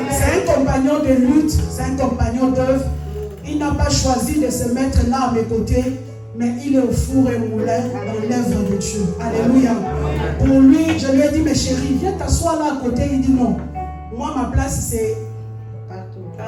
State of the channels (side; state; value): both; identical; correlation 1.00